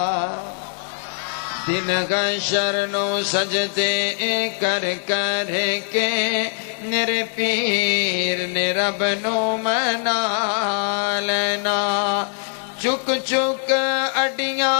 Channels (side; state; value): right; silent; digital silence